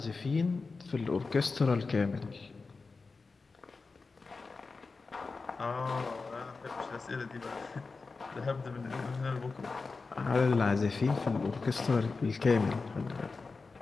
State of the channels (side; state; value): right; quieter; 4.2 dB